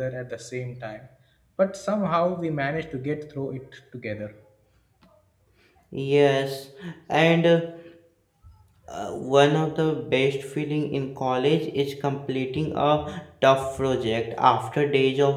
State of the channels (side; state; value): both; identical; correlation 1.00